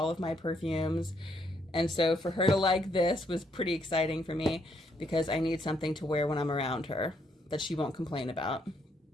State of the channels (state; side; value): normal; both; correlation 0.73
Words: of my perfumes. And so for her to like this was pretty exciting for me, because I need something to wear when I'm around her that she won't complain about.